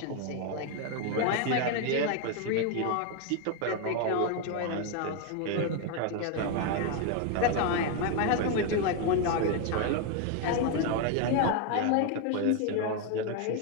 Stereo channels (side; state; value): both; different; correlation 0.01